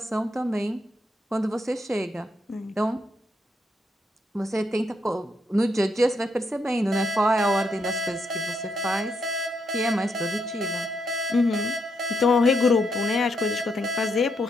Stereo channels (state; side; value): normal; both; correlation 0.78